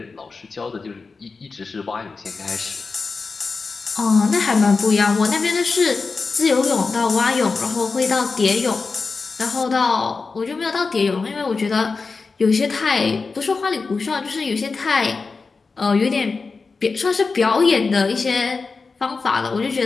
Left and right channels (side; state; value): right; quieter; 4.4 dB